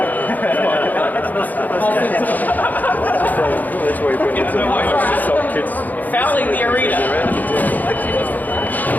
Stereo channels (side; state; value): right; late; 0.082 ms